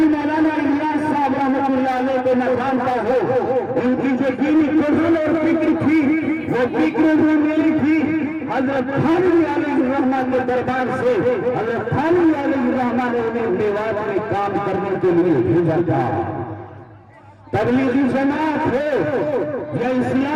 الیاس صاحب رحمۃ اللہ علیہ کو نہ جانتا ہو۔ ان کی جو دینی قرآن اور فکر تھی وہ فکر بھی ملی تھی حضرت تھانوی علیہ الرحمہ کے دربار سے۔ حضرت تھانوی علیہ الرحمہ نے انہیں میوات میں کام کرنے کے لیے بھیجا تھا۔ تبلیغی جماعت ہو یا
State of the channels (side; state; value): both; identical; correlation 1.00